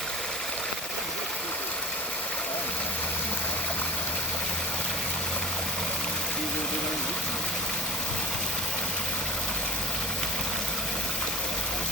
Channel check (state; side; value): normal; both; correlation 0.27